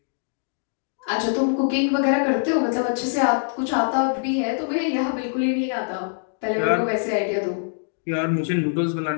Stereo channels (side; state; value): right; silent; digital silence